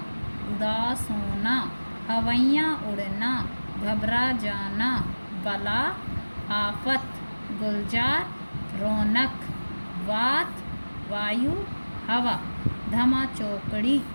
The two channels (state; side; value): inverted; both; correlation -1.00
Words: उदास होना, हवैयाँ उड़ना घबरा जाना, बला आफत, गुलजार रौनक, वात वायु हवा, धमा चौकड़ी